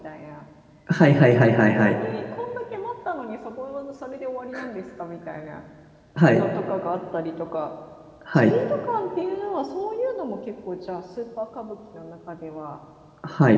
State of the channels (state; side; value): identical; both; correlation 1.00